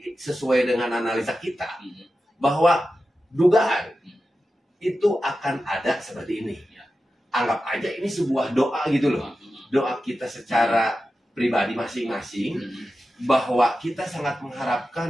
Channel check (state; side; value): normal; both; correlation 0.92